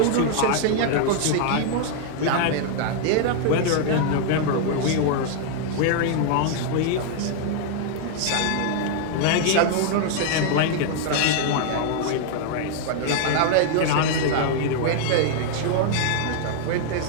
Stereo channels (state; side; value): different; both; correlation 0.00